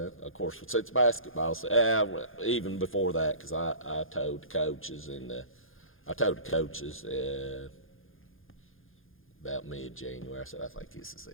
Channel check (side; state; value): right; late; 0.59 ms